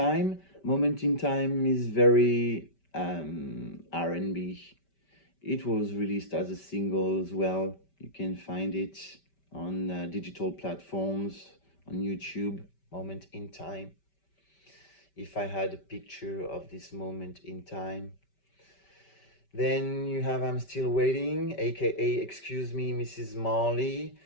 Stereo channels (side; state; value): right; late; 5.2 ms